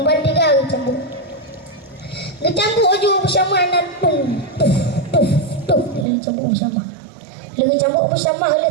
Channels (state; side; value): drops out; left; at 6.1 s